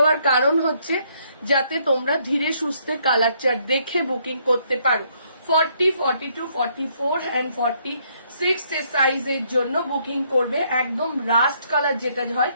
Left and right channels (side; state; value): both; inverted; correlation -0.70